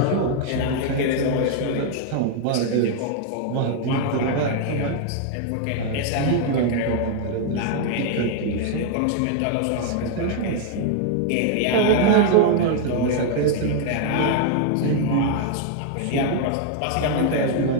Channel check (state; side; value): different; both; correlation 0.00